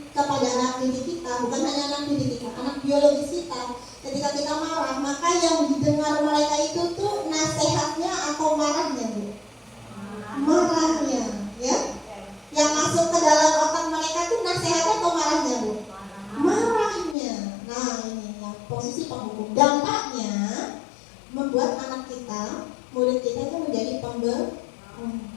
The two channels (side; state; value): right; drops out; at 17.2 s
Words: kepada anak didik kita, bukan hanya anak didik kita, anak biologis kita, ketika kita marah, maka yang didengar mereka itu tuh nasihatnya atau marahnya Bu? Marahnya ya. Yang masuk ke dalam otak mereka tuh nasihatnya atau marahnya Bu? Marahnya. Nah ini ya, posisi penghukum. Dampaknya membuat anak kita, murid kita itu menjadi